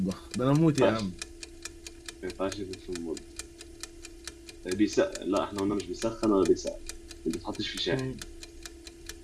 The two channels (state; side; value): identical; both; correlation 1.00